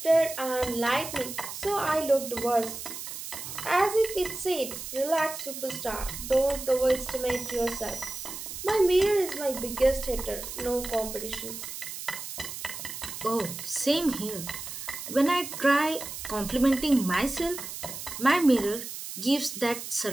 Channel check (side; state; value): right; noise; hiss, 9 dB below the sound